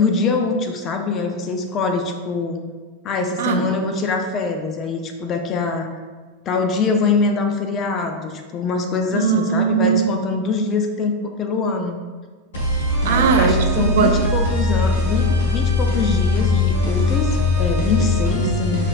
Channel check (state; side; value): normal; both; correlation 0.12